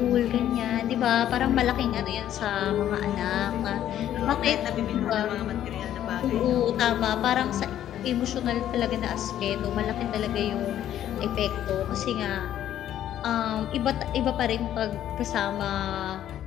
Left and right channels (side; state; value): right; quieter; 11.4 dB